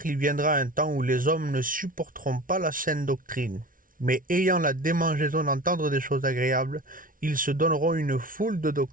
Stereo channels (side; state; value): left; late; 0.40 ms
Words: il viendra un temps où les hommes ne supporteront pas la saine doctrine, mais ayant la démangeaison d'entendre des choses agréables, ils se donneront une foule de